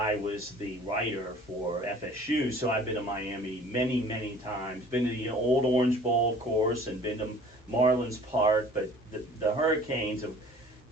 was the writer for FSU. So I've been to Miami many times, been to the old Orange Bowl, of course, and been to Marlins Park. But the Hurricanes, of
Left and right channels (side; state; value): both; normal; correlation 0.49